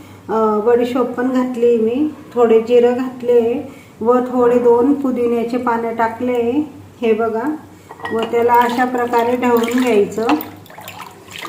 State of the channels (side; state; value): both; identical; correlation 1.00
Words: बडीशोप पण घातली मी. थोडे जिरं घातले व थोडे 2 पुदिन्याचे पानं टाकले. हे बघा, व त्याला अशा प्रकारे ढवळून घ्यायचं.